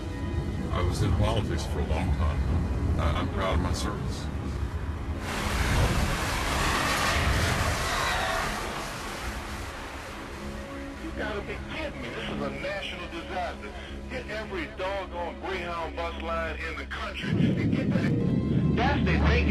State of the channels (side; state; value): both; identical; correlation 1.00